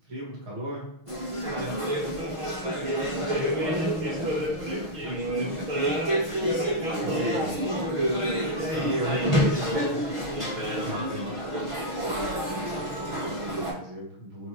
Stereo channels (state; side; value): late; left; 6.3 ms